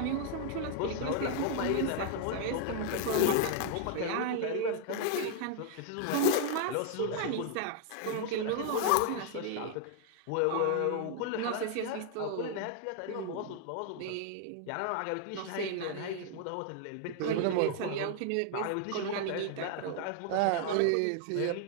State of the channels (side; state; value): both; different; correlation 0.00